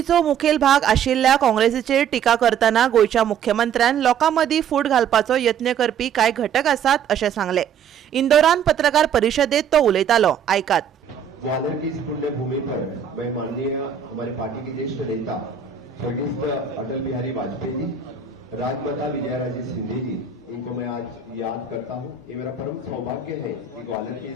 मुखेल भाग आशिल्ल्या काँग्रेसीचेर टिका करताना गोयच्या मुख्यमंत्र्यान लोकां मदीं फूट घालपाचो यत्न करपी कांय घटक आसात अशें सांगलें। इंदोरान पत्रकार परिशदेत तो उलयतालो, आयकात। ग्वालियर की इस पुण्य भूमि पर मैं माननीय हमारे पार्टी के ज्येष्ठ नेता स्वर्गीय अटल बिहारी वाजपेयी जी, राजमाता विजयाराजे सिंधिया जी, इनको मैं आज याद करता हूँ। ये मेरा परम सौभाग्य है कि ग्वालियर की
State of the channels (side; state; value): left; quieter; 7.6 dB